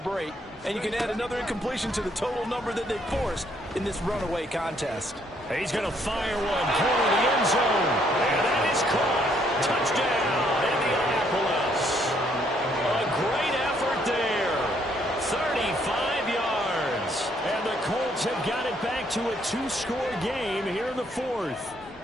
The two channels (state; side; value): normal; both; correlation 0.69